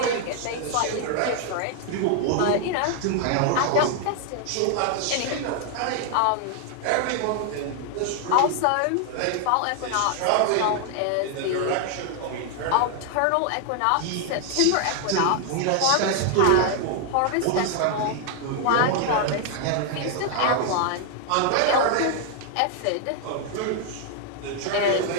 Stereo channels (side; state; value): both; different; correlation 0.00